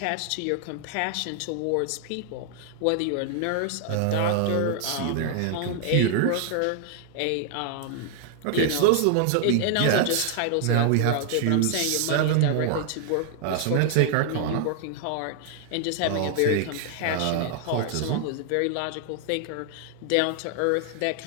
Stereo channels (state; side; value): different; both; correlation 0.00